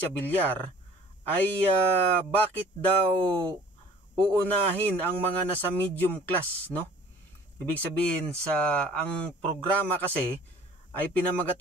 Villar ay bakit daw uunahin ang mga nasa medium class, no? Ibig sabihin ang programa kasi ay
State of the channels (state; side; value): normal; both; correlation 0.50